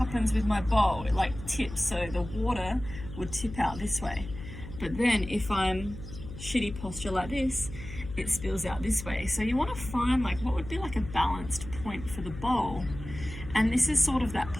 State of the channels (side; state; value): left; noise; hum, 12 dB below the sound